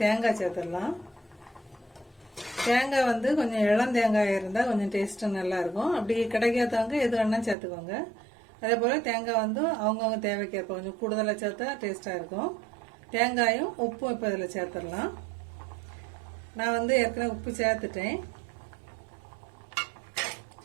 தேங்காய் சேர்த்துடலாம். தேங்காய் வந்து கொஞ்சம் இளம் தேங்காய் இருந்தால் கொஞ்சம் டேஸ்ட்டு நல்லா இருக்கும். அப்படி கிடைக்காதவங்க எது வேணா சேர்த்துக்கோங்க. அதே போல் தேங்காய் வந்து அவங்கவுங்க தேவைக்கேற்ப கொஞ்சம் கூடுதலாக சேர்த்தா டேஸ்ட்டாக இருக்கும். தேங்காயும் உப்பும் இப்போ இதில் சேர்த்துடலாம். நான் வந்து ஏற்கனவே உப்பு சேர்த்துட்டேன்.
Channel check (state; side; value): drops out; left; at 7.6 s